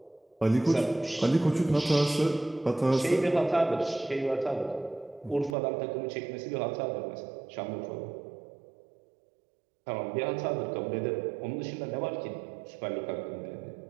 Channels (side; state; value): left; drops out; at 5.6 s